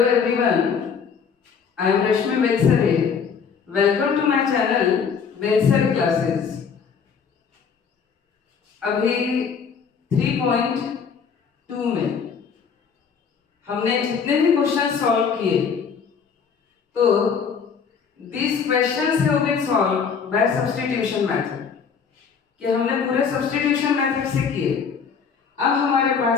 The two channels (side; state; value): right; quieter; 6.3 dB